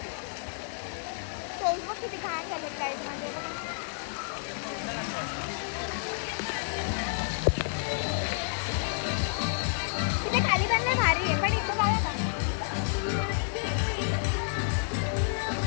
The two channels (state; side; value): silent; right; digital silence